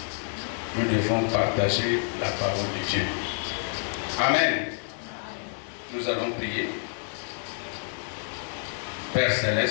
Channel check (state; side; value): silent; right; 59 dB below the other